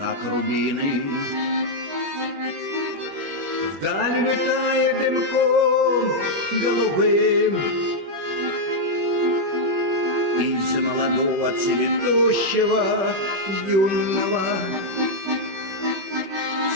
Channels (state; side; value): late; left; 21 ms